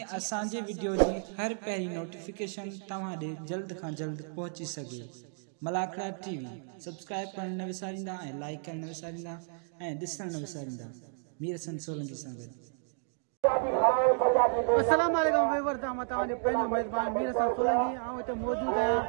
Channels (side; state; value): left; silent; 56 dB below the other